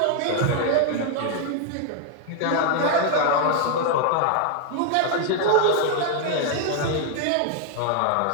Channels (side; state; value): both; different; correlation 0.00